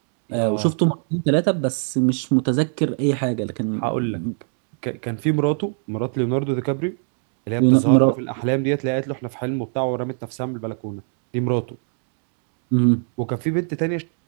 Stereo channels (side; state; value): left; silent; 57 dB below the other